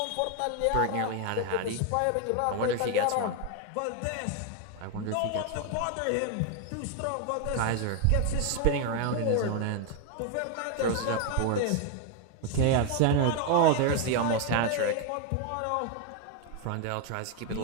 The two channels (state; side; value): different; both; correlation 0.01